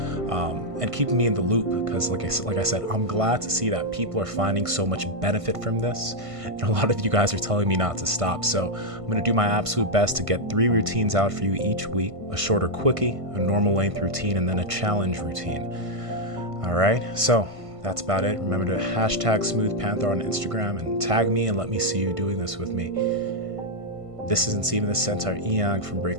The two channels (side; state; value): left; late; 1.5 ms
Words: and keeping me in the loop, because like I said, I'm glad to see that people are finding so much benefit from this, and a lot of you guys are telling me not to stop. So I'm going to do my absolute best to get 3 routines out for you each week: a shorter quickie, a normal length routine, and then a challenge routine. All right, so that's about it. Remember to hashtag Smooth Panther on Instagram and tag me and let me see you doing this with me. This is Nsima, the Centaur Inyang from